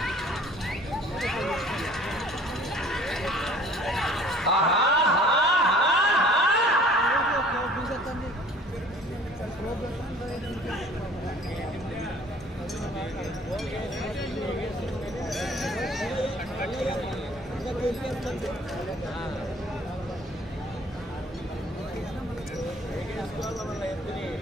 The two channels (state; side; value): normal; both; correlation 0.51